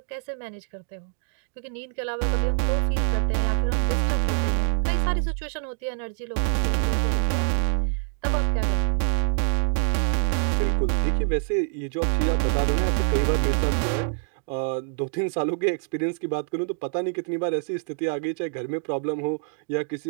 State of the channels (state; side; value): silent; left; digital silence